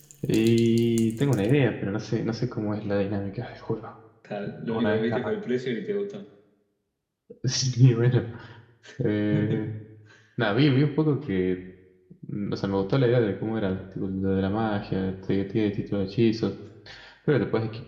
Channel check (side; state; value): both; identical; correlation 1.00